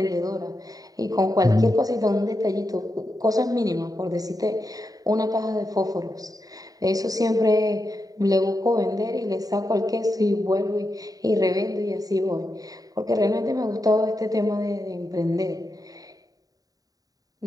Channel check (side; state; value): left; late; 0.18 ms